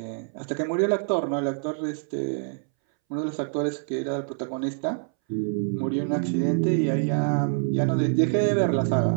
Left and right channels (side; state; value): left; silent; 61 dB below the other